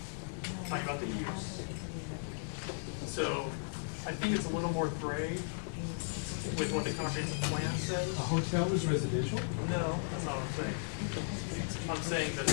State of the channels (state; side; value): silent; right; digital silence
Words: I'm talking about the use. So I think it's a little more gray with what the comprehensive plan says. A hotel is residential? No, that's not what I'm saying. I'm saying that